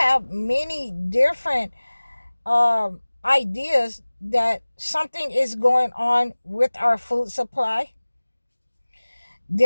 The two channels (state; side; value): inverted; both; correlation -1.00